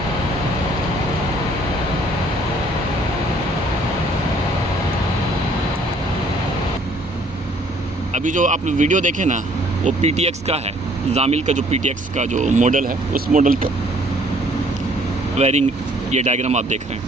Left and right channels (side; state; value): both; normal; correlation 0.60